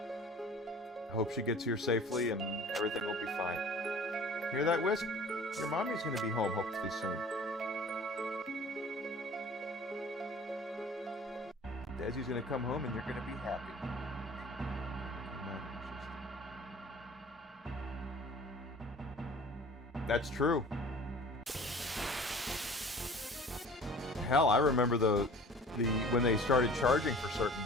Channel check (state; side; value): normal; both; correlation 0.45